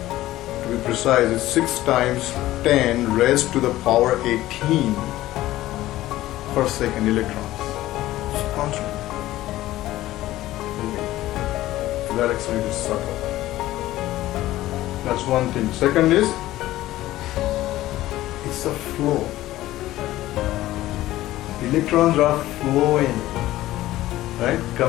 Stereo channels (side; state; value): right; quieter; 15.6 dB